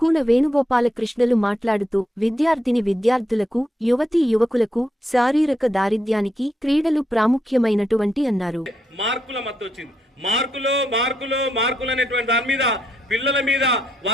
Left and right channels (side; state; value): both; normal; correlation 0.80